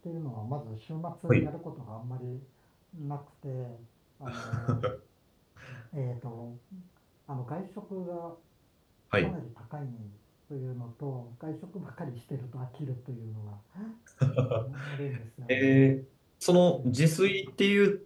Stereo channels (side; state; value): both; identical; correlation 1.00